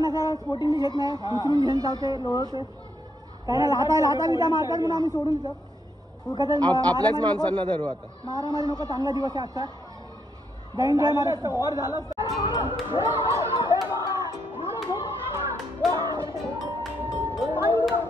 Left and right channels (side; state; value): both; normal; correlation 0.77